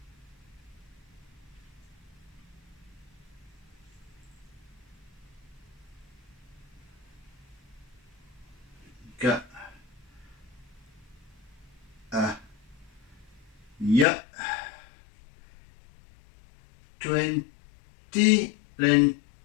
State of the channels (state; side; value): drops out; right; at 14.1 s